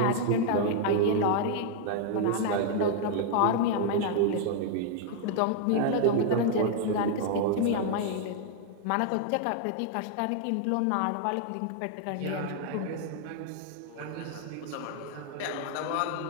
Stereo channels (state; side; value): different; both; correlation 0.00